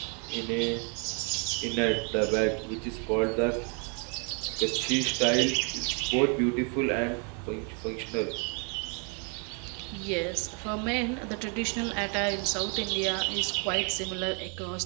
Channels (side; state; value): left; quieter; 37.8 dB